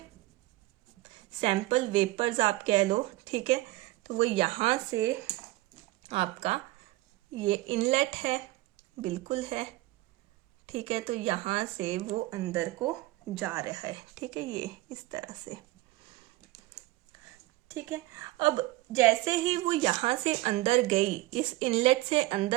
सैंपल वेपर्स आप कह लो। ठीक है, तो वो यहाँ से आपका ये इनलेट है, बिल्कुल है। ठीक है, तो यहाँ से वो अंदर को जा रहा है। ठीक है, ये इस तरह से। ठीक है, अब जैसे ही वो यहाँ से अंदर गई, इस इनलेट से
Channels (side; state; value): left; quieter; 18.5 dB